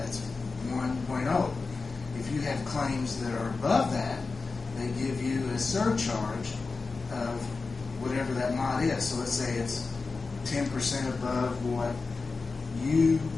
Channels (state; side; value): quieter; right; 4.2 dB